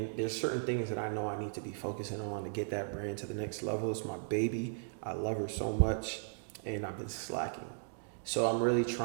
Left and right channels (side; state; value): left; silent; digital silence